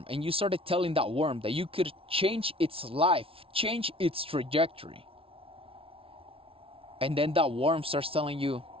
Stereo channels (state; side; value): late; left; 0.26 ms